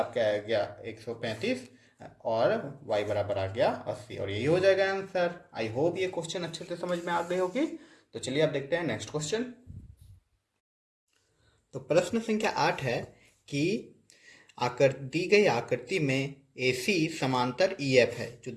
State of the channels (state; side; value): identical; both; correlation 1.00